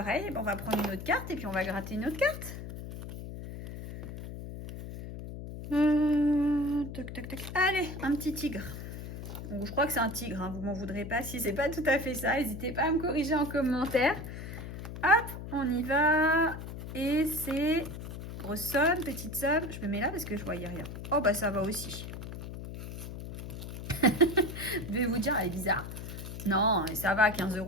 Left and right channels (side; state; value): left; noise; hum, 9 dB below the sound